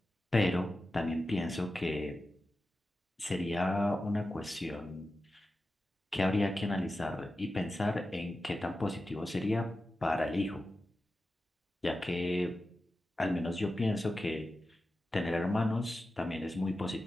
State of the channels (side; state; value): both; normal; correlation 0.93